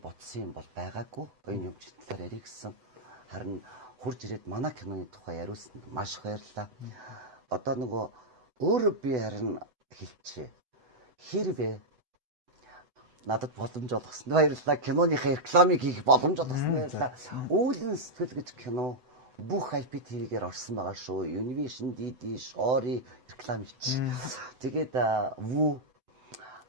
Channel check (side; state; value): left; late; 8.0 ms